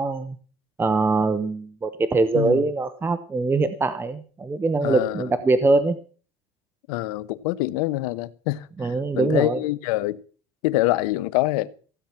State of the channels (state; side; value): normal; both; correlation 0.55